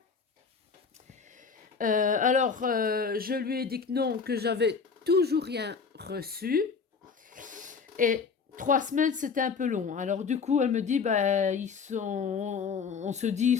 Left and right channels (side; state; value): right; quieter; 5.5 dB